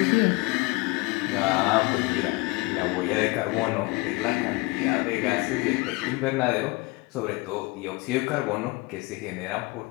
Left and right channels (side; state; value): right; quieter; 24.3 dB